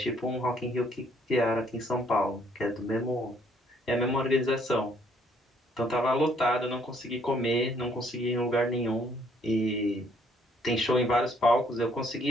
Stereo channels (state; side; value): normal; both; correlation 0.65